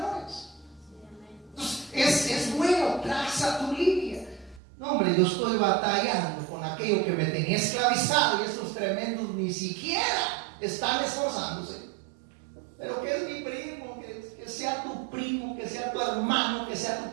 Entonces, es bueno, traza tu línea. No, hombre, yo estoy batallando con aquello que me tenía esclavizado y estos tremendos ni siquiera están esforzándose. Pero que es mi primo, que sea tu primo, que sea tu hermano, que sea tu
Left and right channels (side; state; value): left; drops out; at 4.6 s